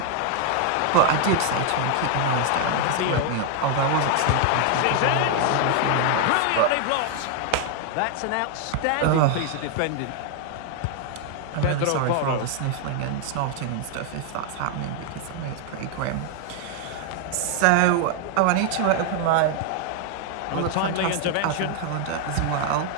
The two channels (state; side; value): different; both; correlation 0.00